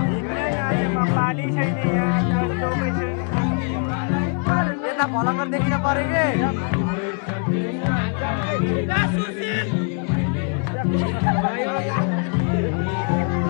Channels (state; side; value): quieter; right; 39.3 dB